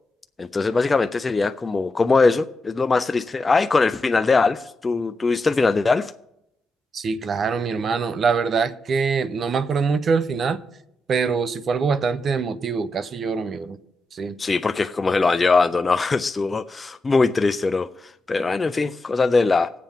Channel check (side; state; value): both; normal; correlation 0.86